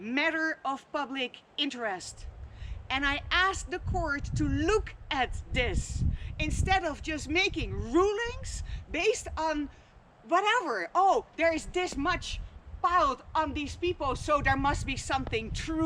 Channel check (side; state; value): both; identical; correlation 1.00